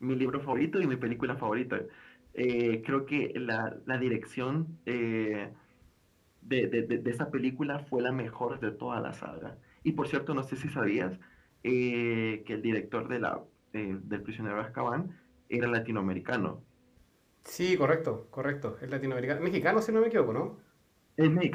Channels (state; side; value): identical; both; correlation 1.00